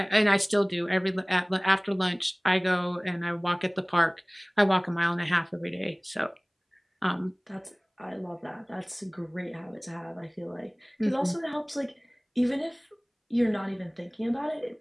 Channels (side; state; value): both; identical; correlation 1.00